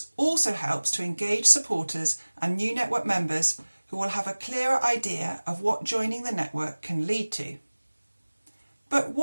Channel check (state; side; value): inverted; both; correlation -1.00